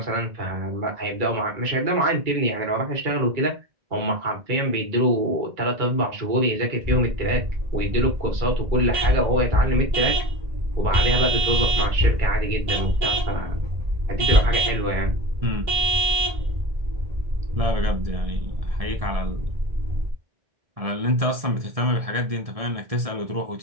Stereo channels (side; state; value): left; late; 1.7 ms